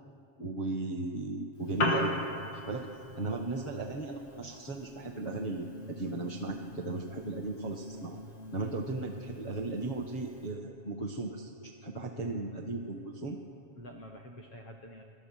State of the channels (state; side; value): late; right; 7.4 ms